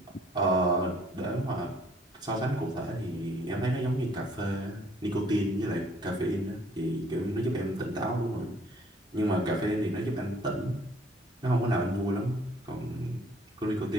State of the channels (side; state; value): both; normal; correlation 0.60